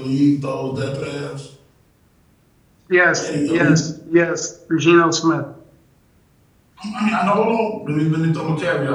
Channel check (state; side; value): identical; both; correlation 1.00